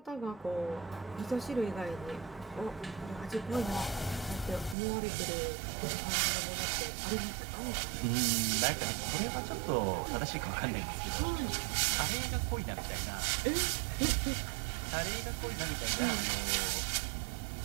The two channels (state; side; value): drops out; left; at 4.8 s